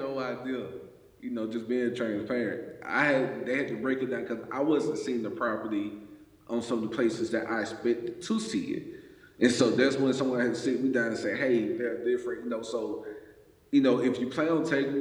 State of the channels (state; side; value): identical; both; correlation 1.00